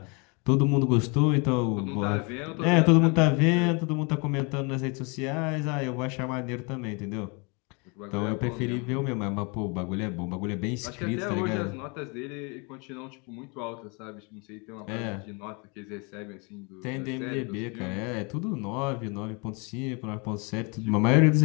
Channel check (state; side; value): quieter; right; 31.4 dB